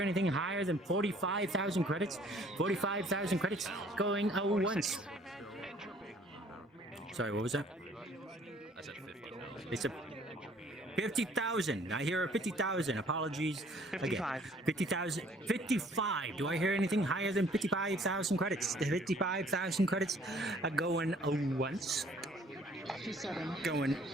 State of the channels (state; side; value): normal; both; correlation 0.58